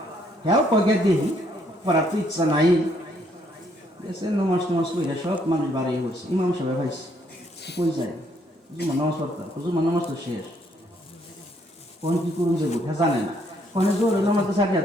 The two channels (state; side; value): normal; both; correlation 0.69